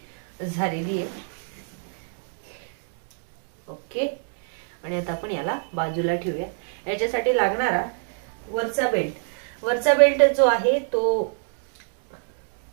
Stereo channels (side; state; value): left; silent; digital silence